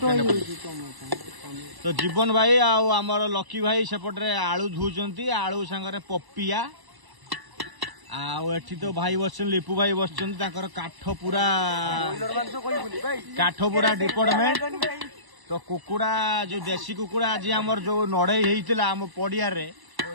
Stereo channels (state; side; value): late; left; 1.0 ms